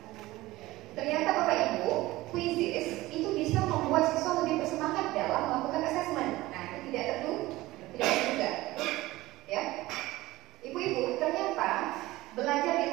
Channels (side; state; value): left; quieter; 18.2 dB